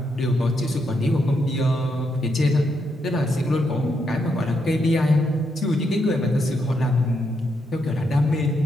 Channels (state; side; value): normal; both; correlation 0.80